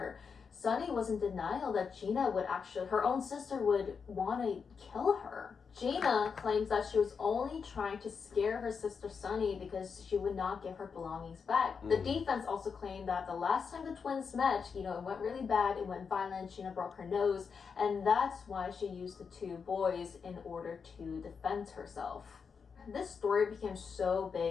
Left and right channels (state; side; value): quieter; right; 5.9 dB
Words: Sunny was in denial that Gina her own sister would want to kill her. Gina claims that she was only trying to scare her sister Sunny because she would not give her belongings back. The defense also claimed that the last time the twins met, it went really bad, it went violent, Gina broke her nose, and that's why she used the two boys in order to defend herself. This story became so